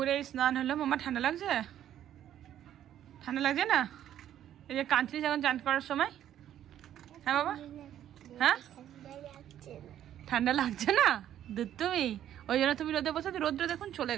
স্নান হলো। মামা ঠান্ডা লাগছে না? এই যে কাঁচলি যখন চান করার সময়, হ্যাঁ বাবা, হ্যাঁ ঠান্ডা লাগছে না দুধ, তুমি ওই জন্য তুমি রোদে বসে, রৌদ্র দেখুন চলে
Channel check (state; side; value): quieter; left; 11.1 dB